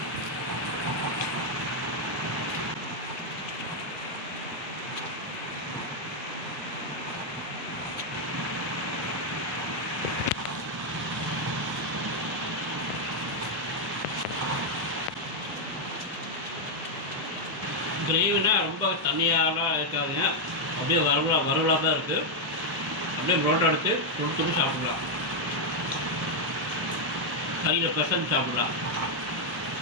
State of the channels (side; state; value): both; normal; correlation -0.01